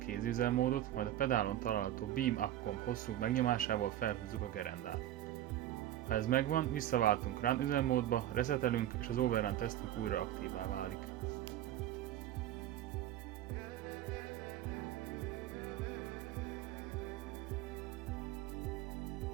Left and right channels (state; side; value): quieter; left; 12.9 dB